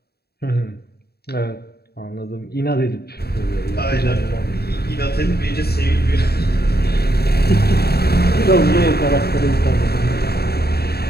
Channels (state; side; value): late; right; 0.46 ms